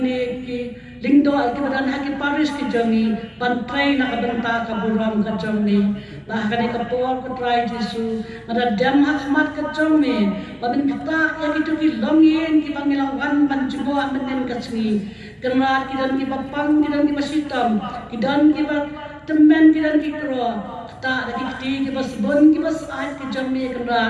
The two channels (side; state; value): both; identical; correlation 1.00